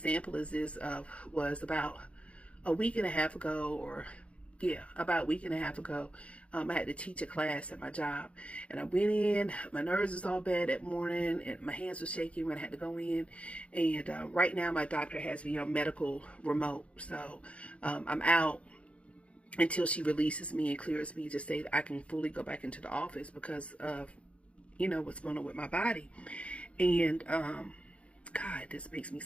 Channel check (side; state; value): right; late; 0.062 ms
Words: is this was about a week and a half ago, or yeah, about a week and a half ago, I had to teach a class at my job, and I went in. My nerves was all bad that morning, and my hands were shaking when I had to go in. And right now, my doctor has me on medical remote, so I'm out until she releases me and clears me to say that I can fully go back into the office because of what's going on with my body. And God, this makes me